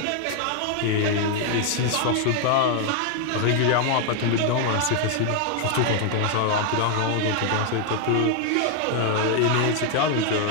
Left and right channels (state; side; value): different; both; correlation 0.00